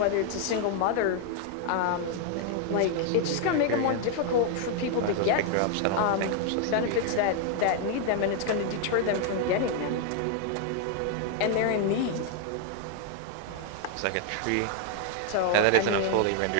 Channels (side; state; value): both; different; correlation 0.00